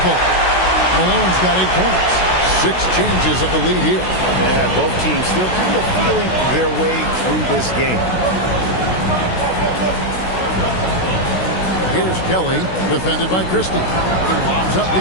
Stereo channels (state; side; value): late; right; 16 ms